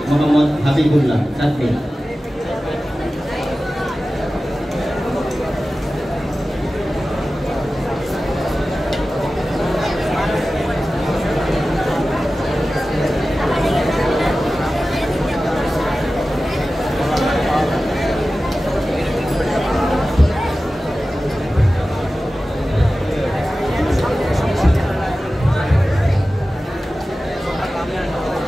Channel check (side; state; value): both; normal; correlation 0.95